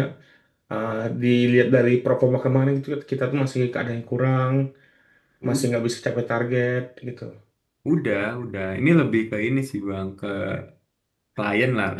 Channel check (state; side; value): identical; both; correlation 1.00